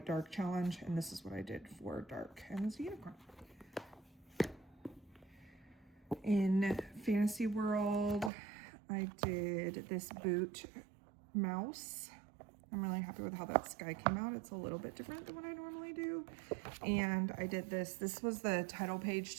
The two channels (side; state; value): left; drops out; at 8.3 s